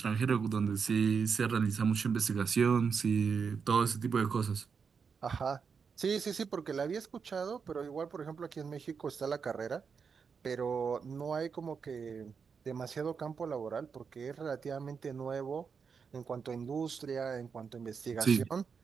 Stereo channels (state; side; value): quieter; left; 5.9 dB